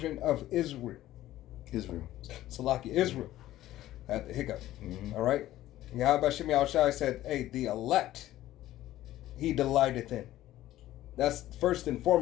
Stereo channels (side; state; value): right; quieter; 14.5 dB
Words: of Israel. Salaki, Israel. At the hiccup. All right? Yahweh Bashem Yahushai said, hey, the elect he delighteth in. That's first and